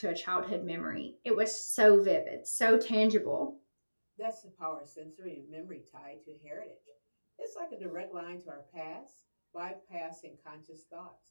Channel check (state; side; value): inverted; both; correlation -1.00